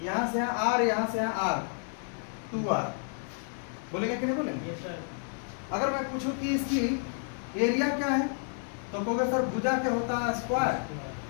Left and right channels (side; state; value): right; silent; 57 dB below the other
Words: यहां से यहाँ r, यहां से यहाँ r, 2r। बोलेंगे कि नहीं बोलेंगे? अगर मैं पूछूं कि इसकी एरिया क्या है तो कहोगे सर भुजा क्या होता है? स्क्वायर।